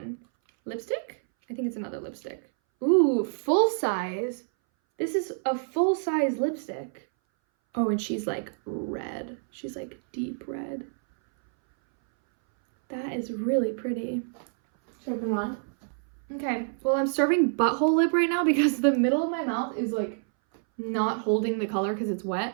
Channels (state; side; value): silent; left; 60 dB below the other